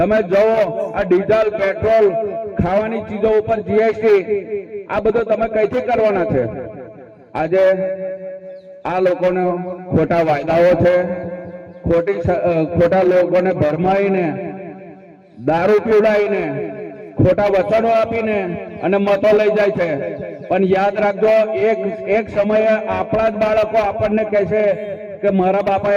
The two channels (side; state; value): both; identical; correlation 1.00